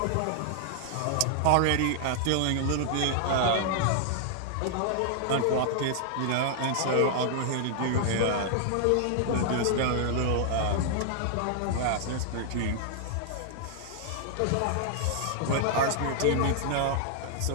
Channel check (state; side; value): different; both; correlation -0.01